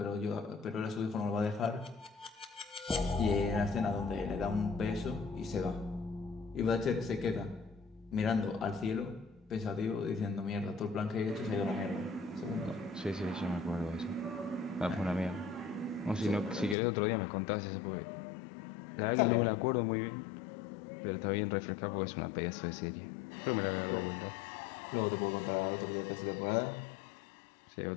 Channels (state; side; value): drops out; right; at 16.8 s